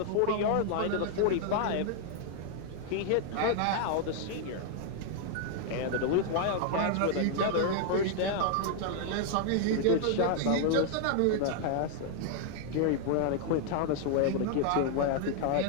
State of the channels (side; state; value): both; different; correlation 0.00